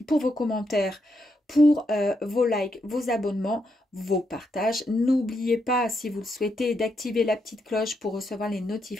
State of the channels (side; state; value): both; normal; correlation 0.80